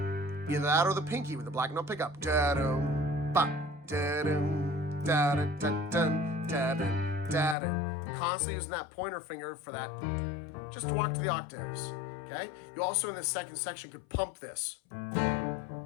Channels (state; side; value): drops out; right; at 7.6 s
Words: Either that or the pinky with the black note pickup. Da-dum, ba, da-dum, da-da-da-dum, da-dum, da-dum. Constantly using that pointer finger for that, just to walk to the octaves, okay? You also in this second section could pump this. I'm